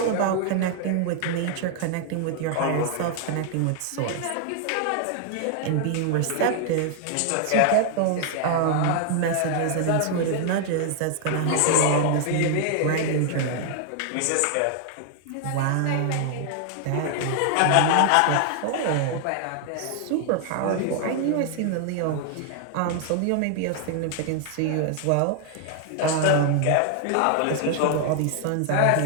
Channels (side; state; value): both; different; correlation 0.00